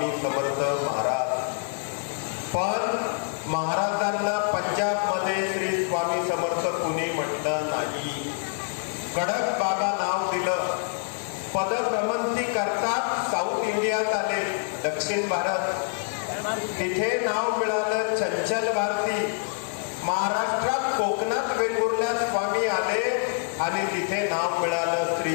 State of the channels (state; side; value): silent; right; 61 dB below the other